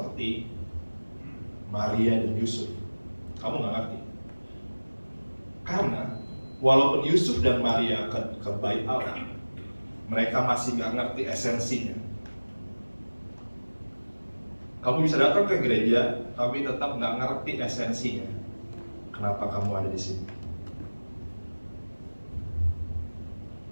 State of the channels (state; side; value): inverted; both; correlation -1.00